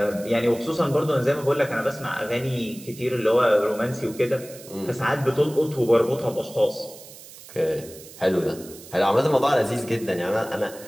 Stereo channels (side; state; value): right; noise; hiss, 18 dB below the sound